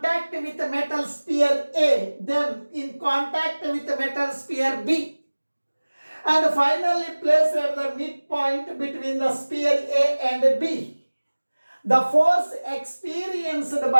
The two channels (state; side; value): inverted; both; correlation -1.00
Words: with the metal sphere A, then in contact with the metal sphere B, and finally placed at the midpoint between the sphere A and B. The force experienced